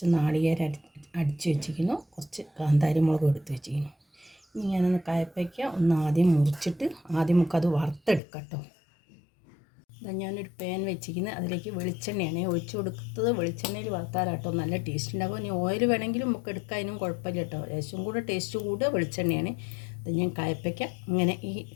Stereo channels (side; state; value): right; drops out; at 8.2 s